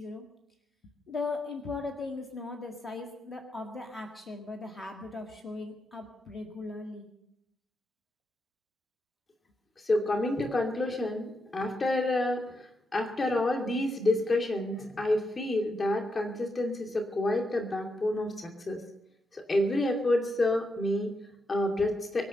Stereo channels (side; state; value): both; normal; correlation 0.83